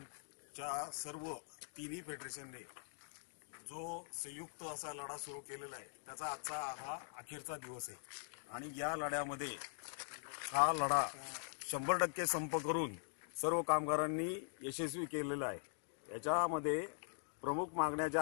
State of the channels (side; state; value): right; silent; digital silence